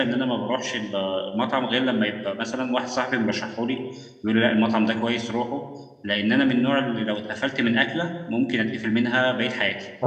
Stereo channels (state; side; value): identical; both; correlation 1.00